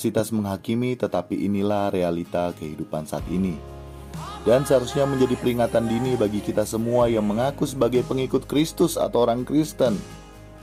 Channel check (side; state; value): both; identical; correlation 1.00